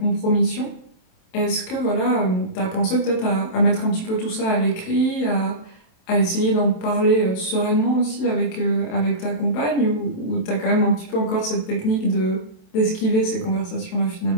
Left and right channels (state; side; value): late; right; 27 ms